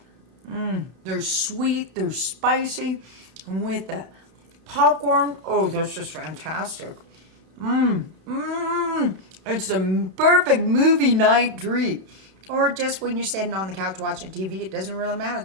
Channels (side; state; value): left; late; 32 ms